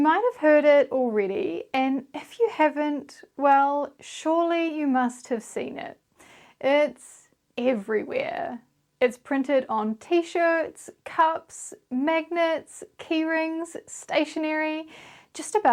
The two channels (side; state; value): both; identical; correlation 1.00